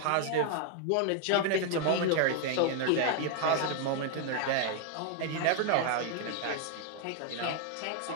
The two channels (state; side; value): different; both; correlation 0.00